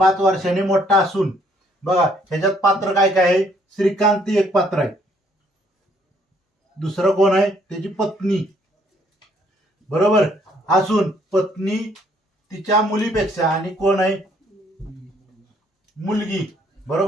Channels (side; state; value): both; normal; correlation 0.65